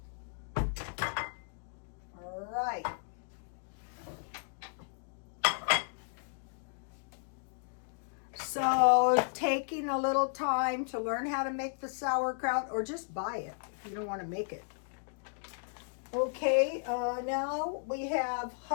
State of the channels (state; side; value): silent; right; digital silence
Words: All right. So taking a little time to learn how to make the sauerkraut, or just buy it if you don't want to make it. Okay, now we have